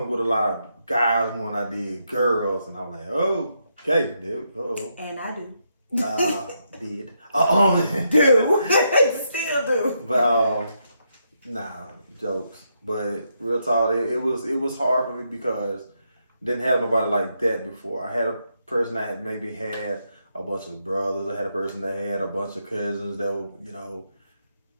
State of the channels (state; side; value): inverted; both; correlation -0.80